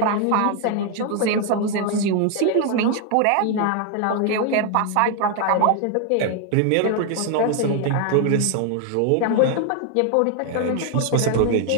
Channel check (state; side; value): different; both; correlation 0.00